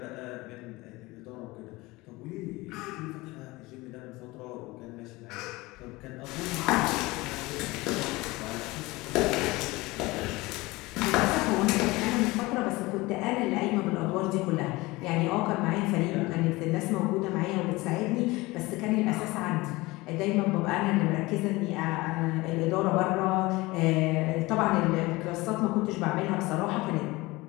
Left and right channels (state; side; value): quieter; right; 21.5 dB